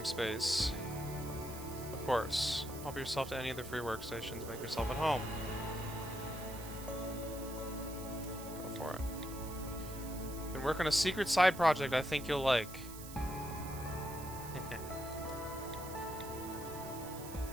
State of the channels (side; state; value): right; noise; hiss, 13 dB below the sound